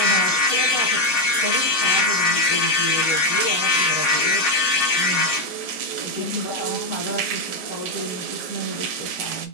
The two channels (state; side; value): normal; both; correlation 0.06